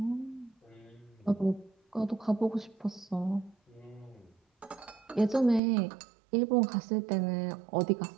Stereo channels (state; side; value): drops out; left; at 5.6 s